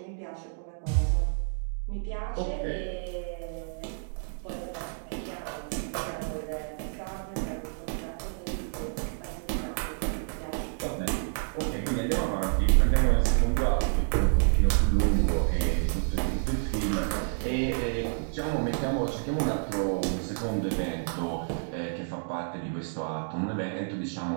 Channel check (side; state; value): left; silent; digital silence